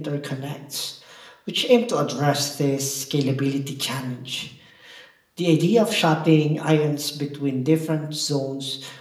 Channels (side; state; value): both; identical; correlation 1.00